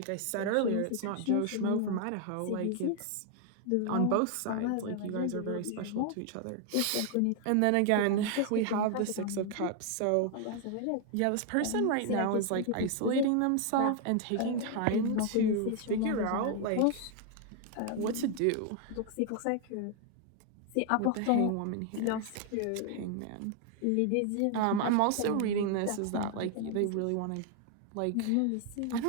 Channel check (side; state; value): both; different; correlation 0.00